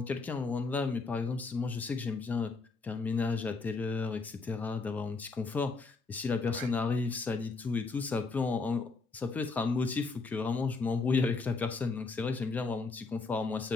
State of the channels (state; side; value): quieter; right; 4.1 dB